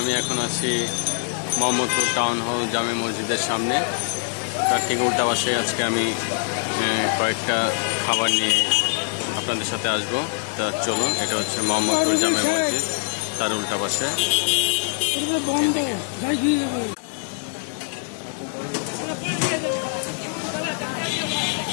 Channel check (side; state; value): right; silent; digital silence